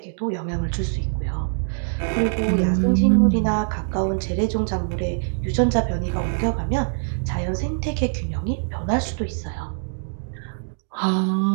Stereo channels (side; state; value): left; silent; digital silence